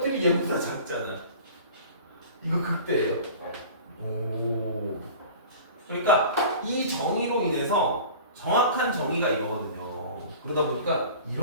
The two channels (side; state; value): both; inverted; correlation -0.41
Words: 얘보다 작잖아. 이거 극대예요. 오. 그러니까 이 정의로 인해서 정확한 정의가 이거거든요. 그러다 보니까